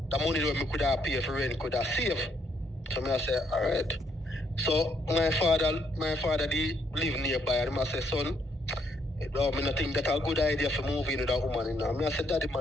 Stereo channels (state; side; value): normal; both; correlation 0.73